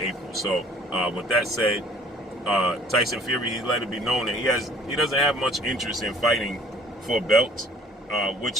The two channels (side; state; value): both; normal; correlation 0.54